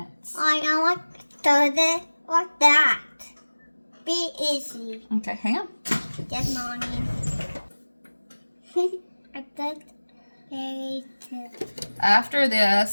I want to do this like that. Be easy. Okay, hang on. Good morning. I did very too. After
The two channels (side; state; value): both; inverted; correlation -1.00